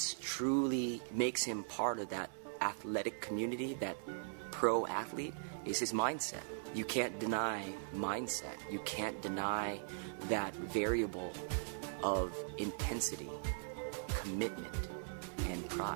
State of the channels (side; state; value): left; silent; digital silence